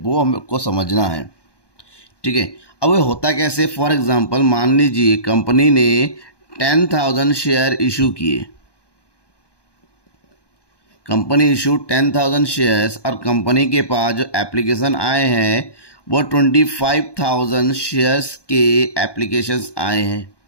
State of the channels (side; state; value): right; late; 1.2 ms